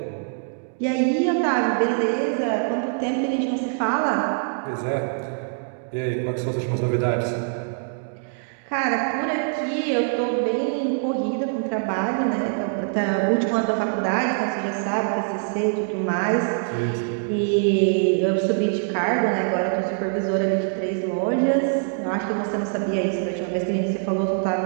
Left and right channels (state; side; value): silent; left; digital silence